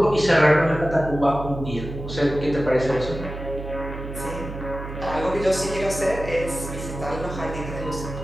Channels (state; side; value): noise; right; hum, 9 dB below the sound